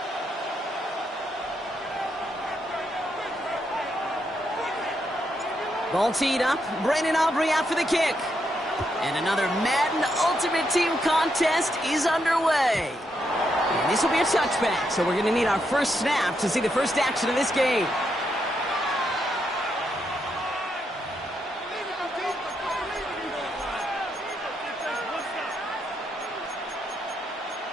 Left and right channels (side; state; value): both; normal; correlation 0.80